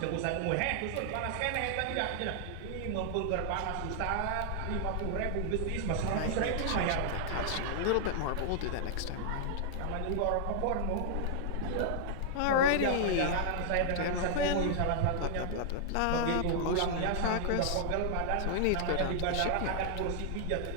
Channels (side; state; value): both; different; correlation -0.01